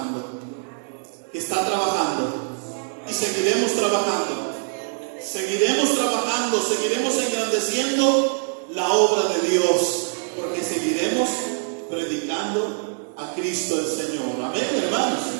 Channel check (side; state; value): left; silent; digital silence